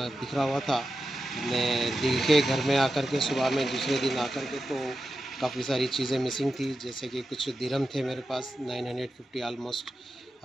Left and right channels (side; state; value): both; normal; correlation 0.91